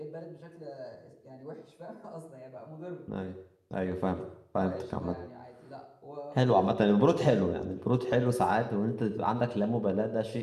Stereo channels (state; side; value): identical; both; correlation 1.00